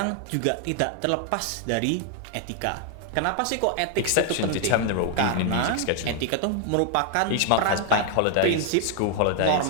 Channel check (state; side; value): different; both; correlation 0.00